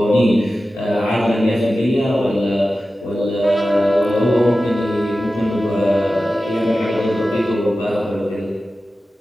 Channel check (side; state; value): both; normal; correlation 0.94